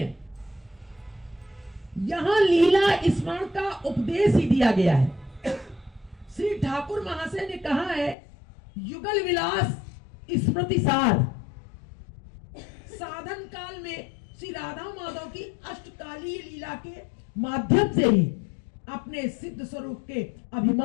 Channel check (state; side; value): drops out; right; at 8.2 s